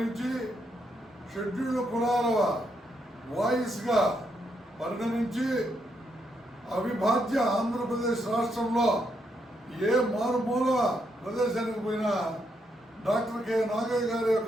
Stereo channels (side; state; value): both; normal; correlation 0.78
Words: షెడ్యూల్డ్ కులాల వాయిస్గా పరిణమించి అవిభాజ్య ఆంధ్రప్రదేశ్ రాష్ట్రంలో ఏ మారుమూల ప్రదేశానికి పోయినా డాక్టర్ కె నాగయ్య గారి